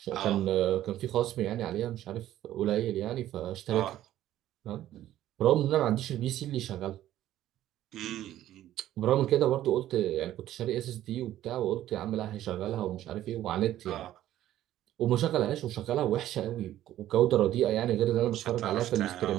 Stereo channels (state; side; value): quieter; left; 13.1 dB